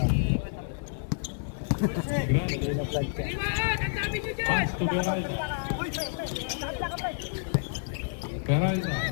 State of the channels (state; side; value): silent; right; digital silence